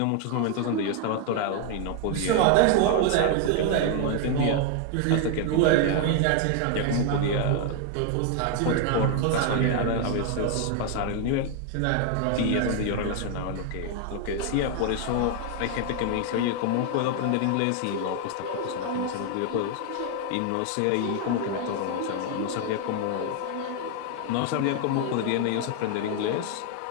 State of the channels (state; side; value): different; both; correlation 0.00